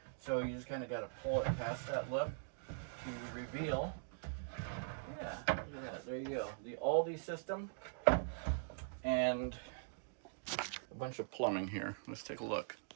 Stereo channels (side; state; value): left; silent; digital silence